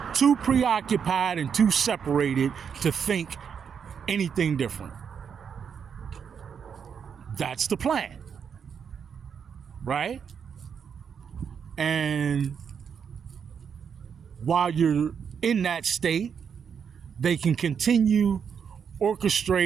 too preoccupied, and too separated to think anything different. That's the plan, right? And while you're in that state, they can continue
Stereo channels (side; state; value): left; quieter; 7.1 dB